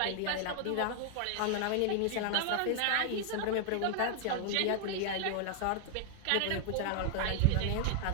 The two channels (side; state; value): both; different; correlation 0.00